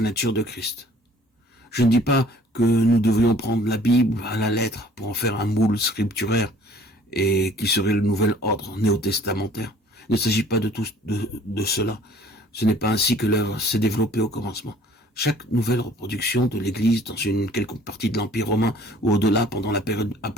nature de Christ. Je ne dis pas que nous devrions prendre la Bible à la lettre pour en faire un moule scripturaire et qui serait le nouvel ordre néo-testamentaire. Il ne s'agit pas de cela. Ce n'est pas ainsi que l'œuvre s'est développée au commencement. Chaque nouvelle reproduction de l'Église dans une quelconque partie de l'Empire romain ou au-delà pendant la période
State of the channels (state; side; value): normal; both; correlation 0.54